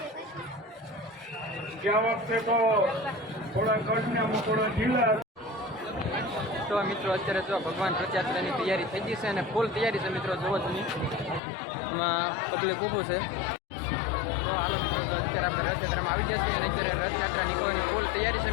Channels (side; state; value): right; drops out; at 11.4 s